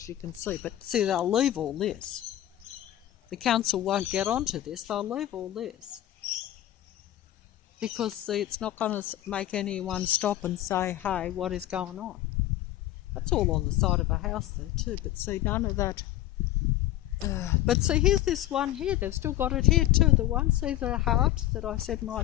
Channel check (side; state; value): right; quieter; 13.8 dB